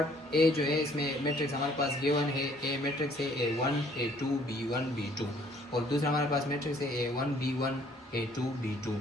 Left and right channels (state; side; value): normal; both; correlation 0.60